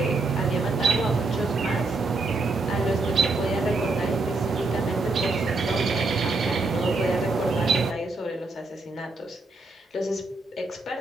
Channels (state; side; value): quieter; left; 3.4 dB